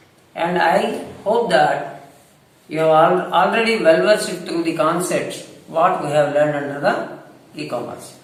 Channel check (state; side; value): identical; both; correlation 1.00